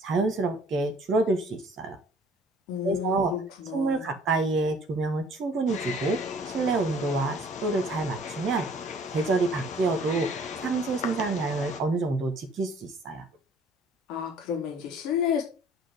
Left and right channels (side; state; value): both; normal; correlation 0.55